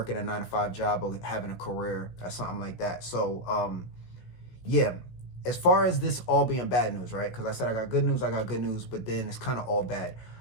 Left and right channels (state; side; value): late; right; 16 ms